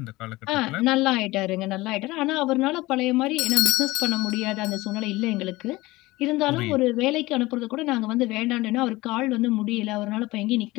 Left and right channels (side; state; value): right; quieter; 20.0 dB